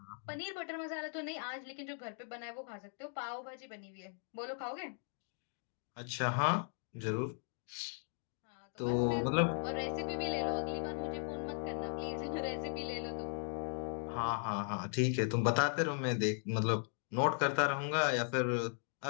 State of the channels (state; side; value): silent; right; 52 dB below the other